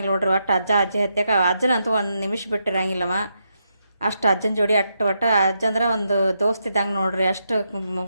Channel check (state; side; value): inverted; both; correlation -0.82